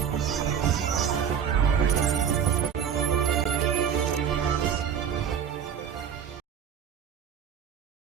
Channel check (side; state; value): left; quieter; 8.2 dB